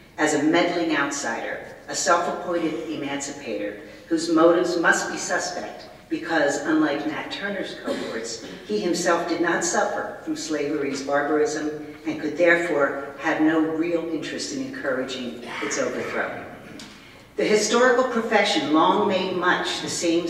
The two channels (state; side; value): identical; both; correlation 1.00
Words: as a meddling outsider, a self-appointed emancipator whose motives must be suspect because, unlike Nat Turner's cohorts, he himself did not suffer from slavery's barbarism and could therefore have no real interest in encouraging its overthrow. The historical profession long made much the same